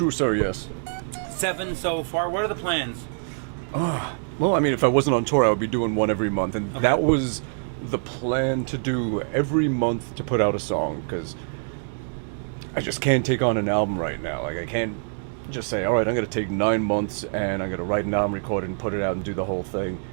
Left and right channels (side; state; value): left; silent; digital silence